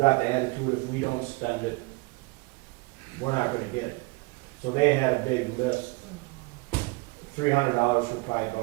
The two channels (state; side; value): quieter; left; 25.2 dB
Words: the attitude if we don't spend it, we're not gonna get it. So they had a big list, $300 for pry